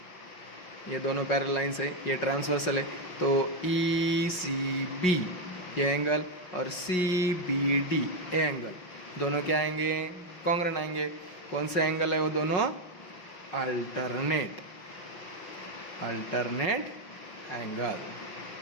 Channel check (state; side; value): late; right; 5.5 ms